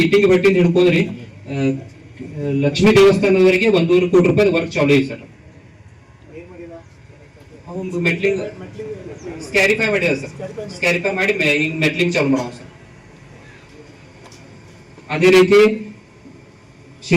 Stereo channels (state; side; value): identical; both; correlation 1.00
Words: ಇಟ್ಟಿಂಗ್ ಭಟ್ಟಿಂದ ಹಿಡ್ಕೊಂಡ್ರಿ ಲಕ್ಷ್ಮೀ ದೇವಸ್ಥಾನದವರೆಗೆ 1.5 ಕೋಟಿ ರೂಪಾಯಿ ವರ್ಕ್ ಚಾಲು ಇದೆ ಸರ್. ಮೆಟ್ಲಿಂಗ್ ಸ್ಕ್ಯಾರಿಫೈ ಮಾಡಿದ ಸರ್. ಸ್ಕ್ಯಾರಿಫೈ ಮಾಡಿ ಈಗ ಮೆಟ್ಲಿಂಗ್ ಚಾಲು ಮಾಡೋ ಸರ್. ಅದೇ ರೀತಿ